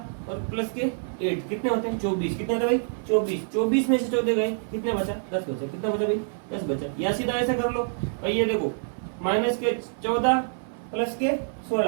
और प्लस के 8, कितने होते हैं 24, कितने होते हैं भाई 24, 24 में से 14 गए, कितने बचा 10 बचा, कितना बचा भाई 10 बचा। या सीधा ऐसा कर लो भाई, ये देखो माइनस के 14 प्लस के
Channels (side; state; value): left; silent; digital silence